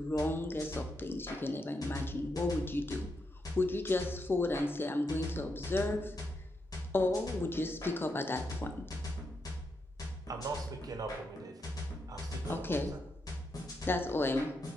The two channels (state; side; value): normal; both; correlation 0.82